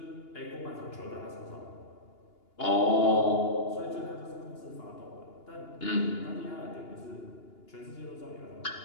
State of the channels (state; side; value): late; right; 2.8 ms